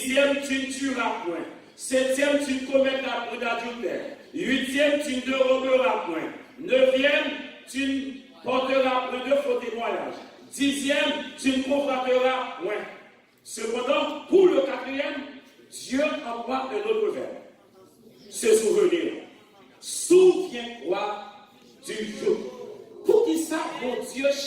tu ne tueras point. Septième, tu ne commettras point d'adultère. Huitième, tu ne déroberas point. Neuvième, tu ne porteras point de faux témoignages. Dixième, tu ne convoiteras point. Cependant, pour le quatrième, Dieu emploie un autre verbe. Se souvenir. Souviens-toi du jour. Pour qui ça, mon Dieu,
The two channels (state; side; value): identical; both; correlation 1.00